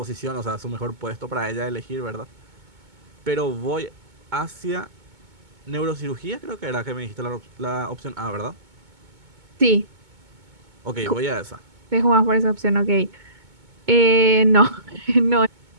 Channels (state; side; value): late; left; 2.2 ms